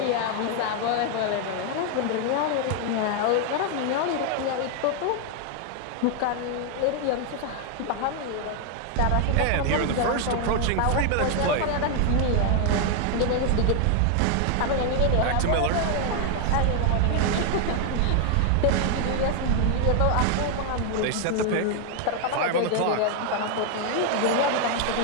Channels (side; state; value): both; different; correlation 0.00